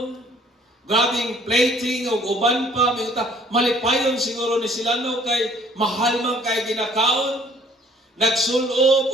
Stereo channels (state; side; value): normal; both; correlation 0.58